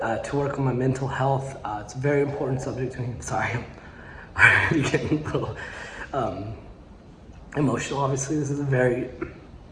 to work on my mental health. It's a very important subject to me. Sorry, I'm already getting a little emotional. Obviously, this is a very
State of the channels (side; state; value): both; identical; correlation 1.00